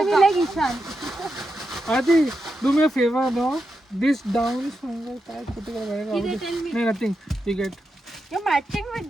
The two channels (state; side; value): normal; both; correlation 0.87